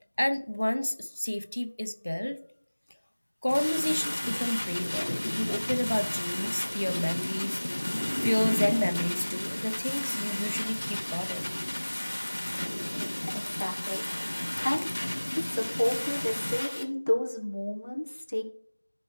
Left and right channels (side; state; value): both; inverted; correlation -1.00